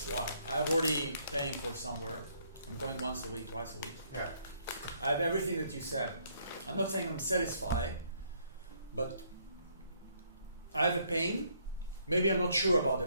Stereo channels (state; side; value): inverted; both; correlation -0.68